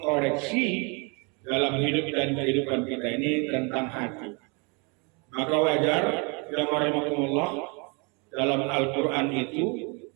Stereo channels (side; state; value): left; quieter; 32.3 dB